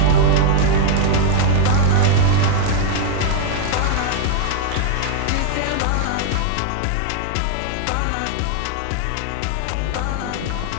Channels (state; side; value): different; both; correlation -0.01